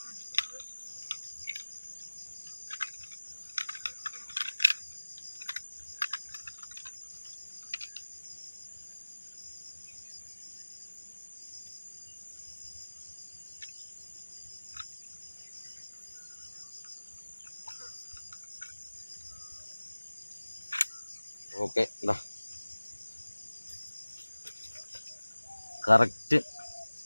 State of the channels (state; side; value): inverted; both; correlation -1.00